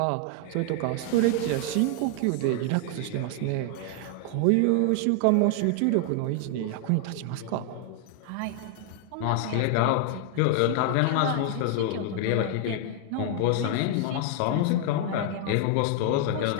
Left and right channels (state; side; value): different; both; correlation 0.00